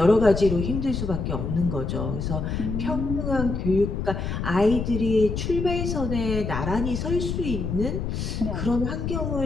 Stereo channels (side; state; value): left; noise; rumble, 3 dB below the sound